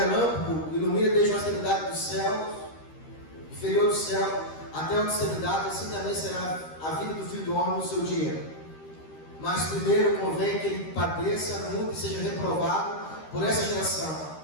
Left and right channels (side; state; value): right; late; 13 ms